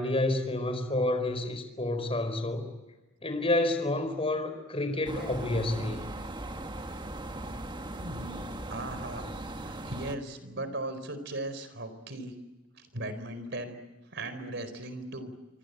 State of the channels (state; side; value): normal; both; correlation 0.48